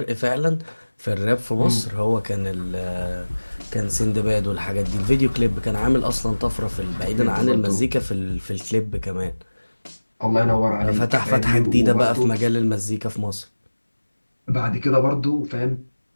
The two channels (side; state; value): both; inverted; correlation -1.00